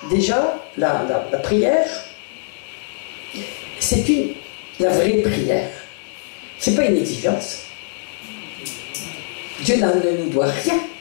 déjà, la prière, C'est la vraie prière. C'est pas une exigence. Dieu ne nous doit rien.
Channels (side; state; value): right; silent; digital silence